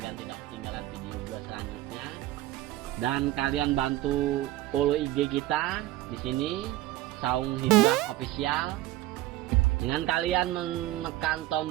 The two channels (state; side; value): quieter; left; 16.0 dB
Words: tidak ketinggalan video gua selanjutnya. Dan kalian bantu follow IG kita di sini, Saung Hijrah Official. Dengan kalian menekan